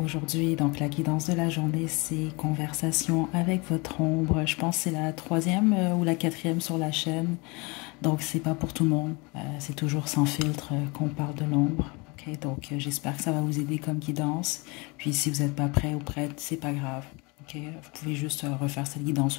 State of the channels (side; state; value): right; quieter; 27.6 dB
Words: Donc la guidance de la journée, c'est conversation avec votre ombre. Je pense que c'est la troisième ou la quatrième sur la chaîne. Donc c'est pas pour tout le monde. C'est toujours sans filtre qu'on parle de l'ombre. Ok, donc j'espère que ça va vous aider comme guidance. Puis si vous n'êtes pas prêt ou prête, c'est pas grave. Ok, vous pouvez juste refaire cette guidance